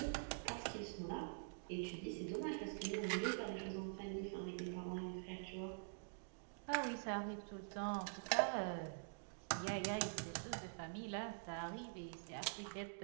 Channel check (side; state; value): left; silent; digital silence